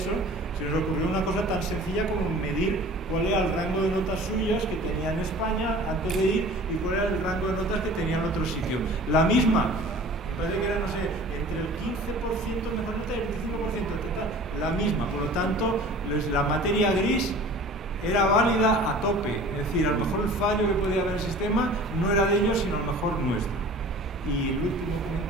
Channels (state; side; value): normal; both; correlation 0.44